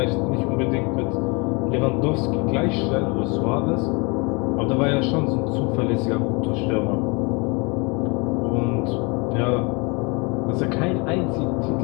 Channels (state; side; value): quieter; right; 29.6 dB